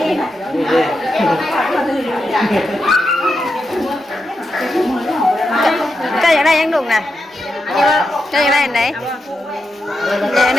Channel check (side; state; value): both; normal; correlation 0.86